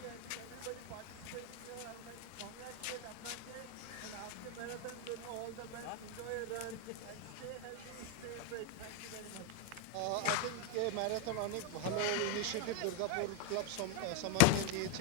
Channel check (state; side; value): different; both; correlation 0.01